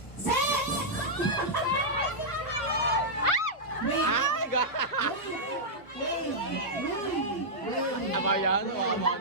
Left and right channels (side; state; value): right; late; 1.1 ms